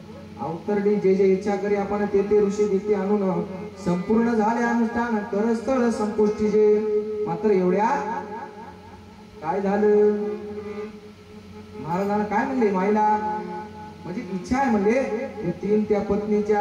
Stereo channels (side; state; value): both; identical; correlation 1.00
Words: अवतरणी जे जे इच्छा करी आपण ते ते ऋषी दिते आणून संपूर्ण झाले अनुष्ठान करस्थळ संपुष्टी जे. मात्र एवढ्या काय झालं? महाराजांना काय म्हणले? माईला म्हणजे इच्छा आहे म्हणले ते तीन त्या